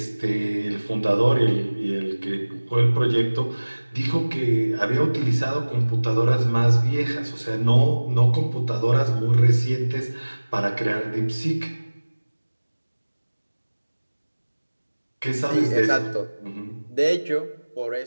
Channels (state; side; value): inverted; both; correlation -1.00